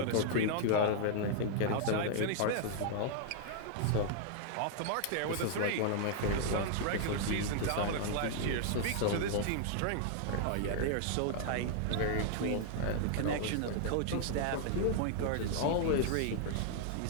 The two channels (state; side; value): different; both; correlation -0.01